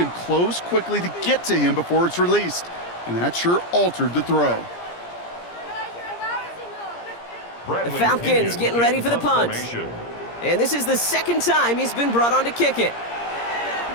close quickly to get to him before it's released. And that sure altered the throw. The Falcons getting ready for the punt. And this is the 2nd time he's been brought on to kick it.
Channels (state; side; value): late; right; 17 ms